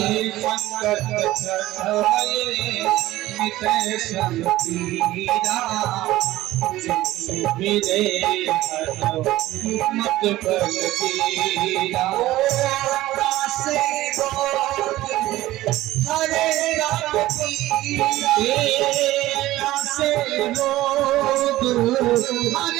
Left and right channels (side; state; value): left; quieter; 16.2 dB